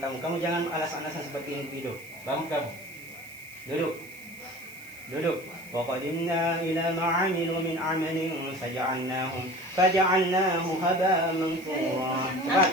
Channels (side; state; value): right; noise; hiss, 20 dB below the sound